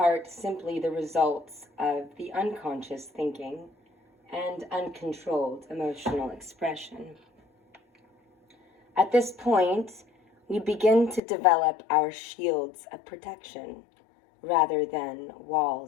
simply the results of the unconscious thinking and uncontrolled emotional expression. At this point, we begin to develop our shields of protection rather than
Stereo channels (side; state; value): right; drops out; at 11.2 s